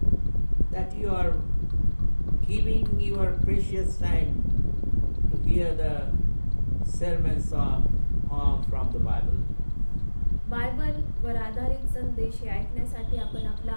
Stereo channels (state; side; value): inverted; both; correlation -1.00